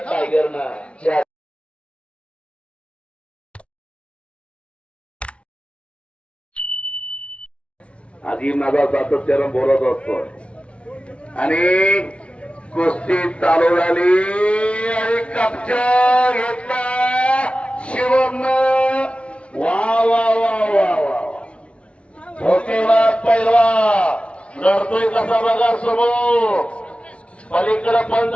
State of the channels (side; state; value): right; late; 0.060 ms